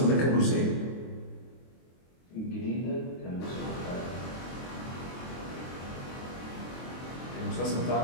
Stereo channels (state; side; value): late; right; 23 ms